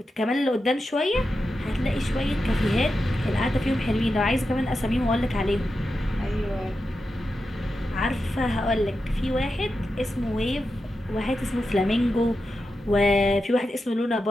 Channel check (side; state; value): both; normal; correlation 0.89